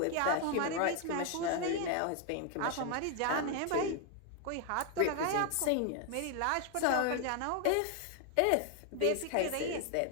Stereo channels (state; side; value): different; both; correlation 0.00